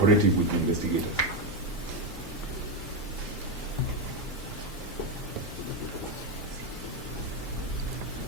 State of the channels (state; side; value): normal; both; correlation 0.08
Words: with the investigators.